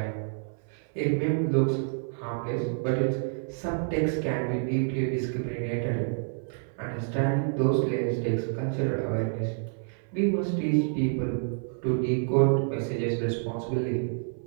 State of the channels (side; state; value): left; silent; 59 dB below the other